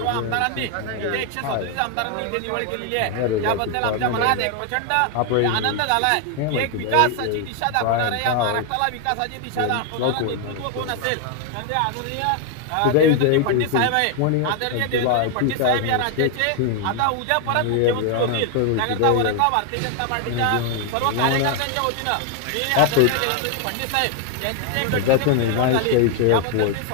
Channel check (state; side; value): different; both; correlation 0.00